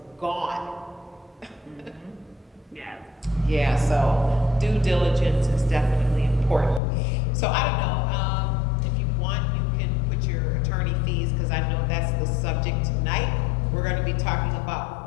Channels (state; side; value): drops out; right; at 6.8 s